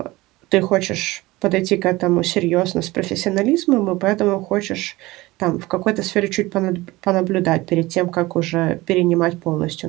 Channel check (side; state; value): left; quieter; 20.0 dB